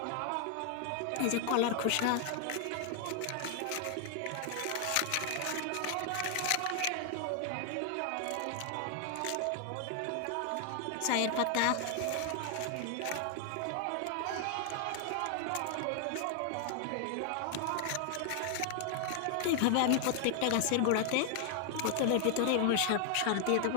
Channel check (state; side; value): different; both; correlation 0.00